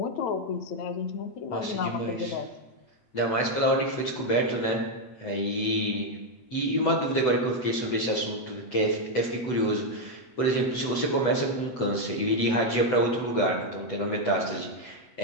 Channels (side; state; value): right; late; 8.1 ms